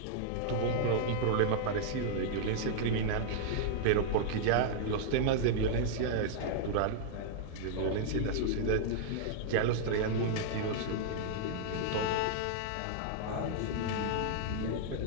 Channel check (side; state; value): both; different; correlation -0.01